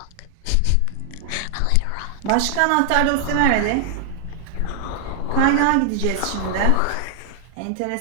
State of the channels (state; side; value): different; both; correlation 0.00